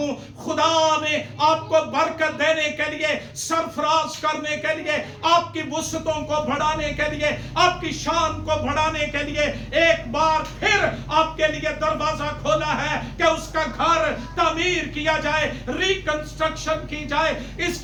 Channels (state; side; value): identical; both; correlation 1.00